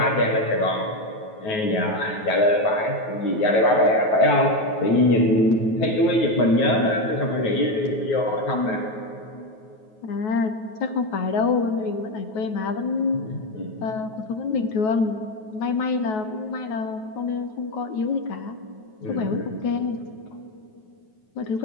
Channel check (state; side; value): late; right; 9.3 ms